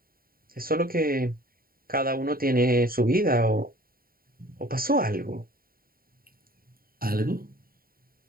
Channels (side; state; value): left; late; 0.43 ms